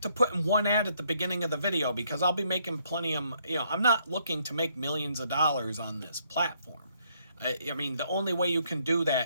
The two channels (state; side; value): inverted; both; correlation -0.70